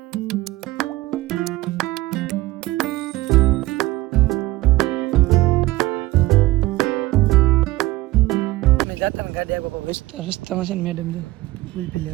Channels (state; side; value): quieter; left; 18.6 dB